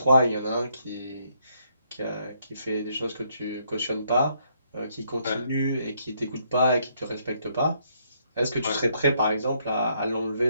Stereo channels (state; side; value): inverted; both; correlation -0.72